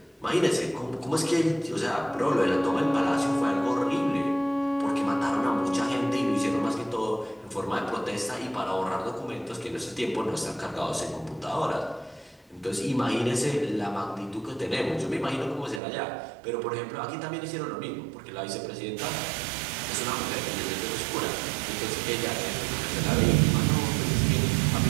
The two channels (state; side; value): drops out; left; at 15.8 s